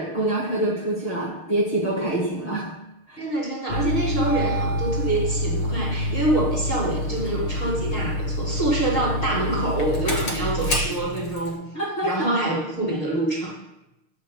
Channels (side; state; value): right; late; 6.6 ms